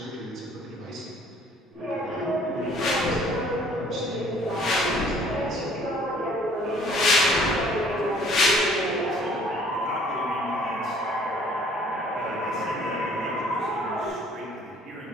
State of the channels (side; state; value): both; normal; correlation 0.56